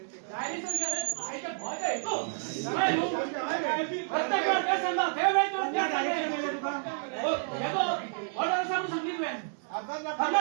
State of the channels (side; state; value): left; silent; 56 dB below the other